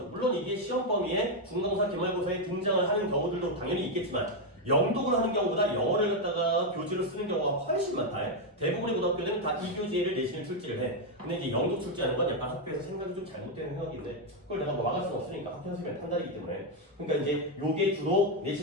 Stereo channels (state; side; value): normal; both; correlation 0.03